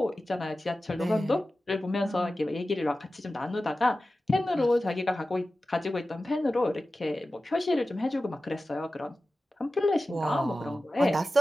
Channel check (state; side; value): normal; both; correlation 0.95